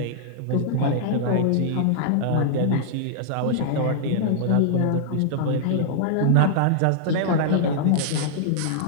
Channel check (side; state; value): both; different; correlation -0.01